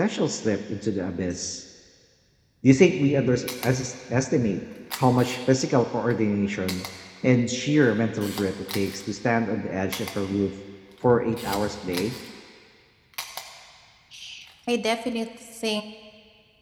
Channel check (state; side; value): identical; both; correlation 1.00